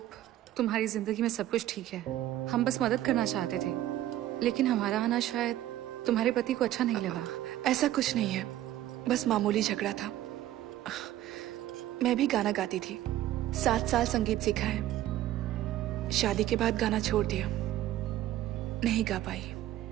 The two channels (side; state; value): left; quieter; 13.6 dB